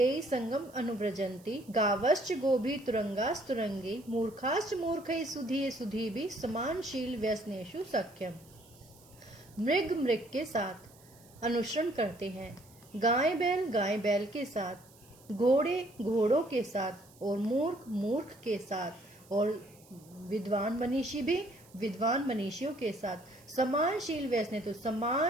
संगम अनुव्रजंती गावश्च गोभी तुरंगास्तुरंगी मूर्खाश्च मूर्खै सुधीये सुधीभि समानशील व्यसनेषु सख्यम। मृग मृग के साथ अनुसरण करते हैं, गाय बैल के साथ, घोड़े घोड़ों के साथ और मूर्ख मूर्ख के साथ और विद्वान मनीषी भी विद्वान मनीषियों के साथ। समानशील व्यसने तो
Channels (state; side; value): noise; right; hiss, 26 dB below the sound